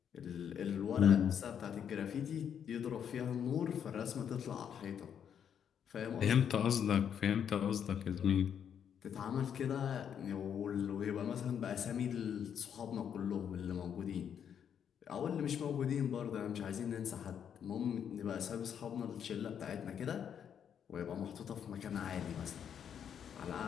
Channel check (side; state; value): right; quieter; 8.4 dB